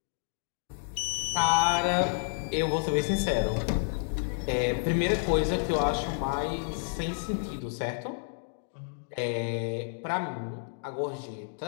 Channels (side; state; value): right; silent; digital silence